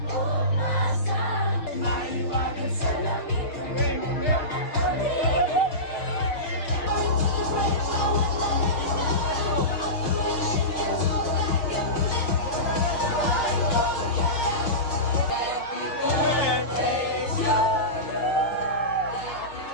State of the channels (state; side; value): late; right; 6.4 ms